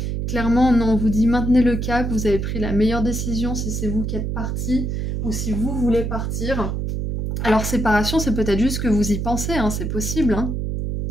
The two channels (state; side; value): noise; right; hum, 2 dB below the sound